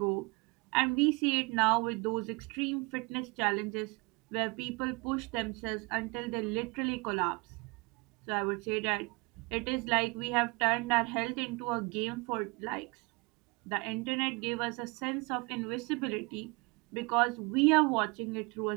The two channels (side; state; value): left; quieter; 27.0 dB